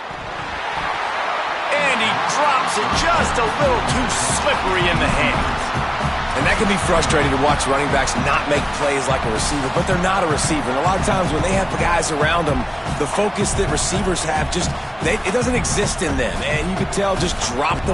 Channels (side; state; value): both; identical; correlation 1.00